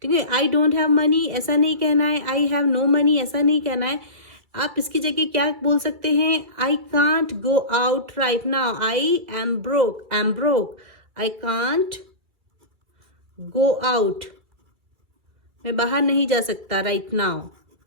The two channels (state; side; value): late; left; 2.5 ms